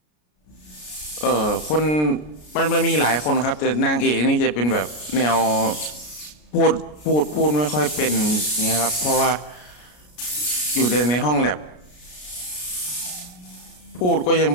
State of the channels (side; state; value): right; late; 33 ms